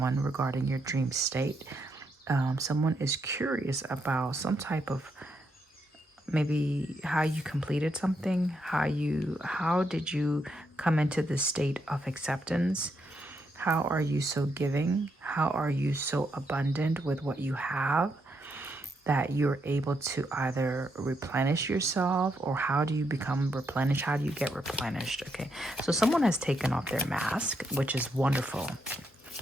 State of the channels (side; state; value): both; normal; correlation 0.79